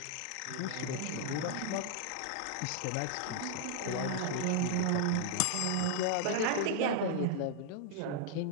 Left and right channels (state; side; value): different; both; correlation -0.01